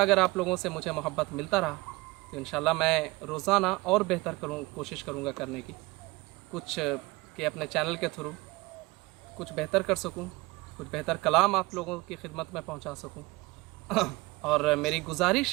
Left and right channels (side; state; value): left; quieter; 22.6 dB